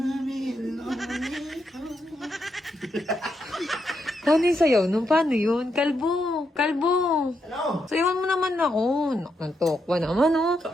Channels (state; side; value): normal; both; correlation 0.82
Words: be lonely. Paano yung sayaw nun? Paano yun? Kalbo! Kalbo! Ano? Sayawan mo naman ako. Nantok ba naman, oh?